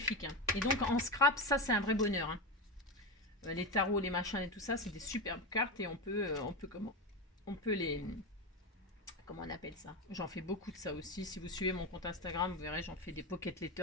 Hein. Et donc, en scrap, ça, c'est un vrai bonheur. Hein. Les tarots, les machins et tout ça, c'est des superbes cartes et on peut les, comment on appelle ça? J'en fais beaucoup de ça aussi. Si vous suivez mon compte Instagram, vous verrez, j'en fais des pocket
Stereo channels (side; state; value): both; normal; correlation 0.16